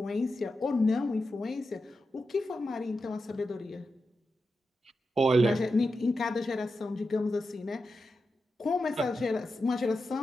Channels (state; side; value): normal; both; correlation 0.90